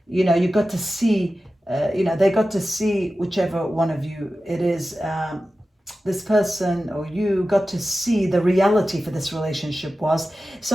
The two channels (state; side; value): normal; both; correlation 0.94